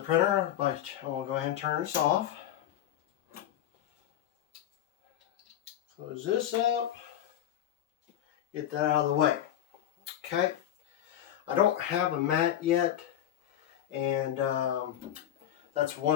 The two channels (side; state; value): right; quieter; 11.4 dB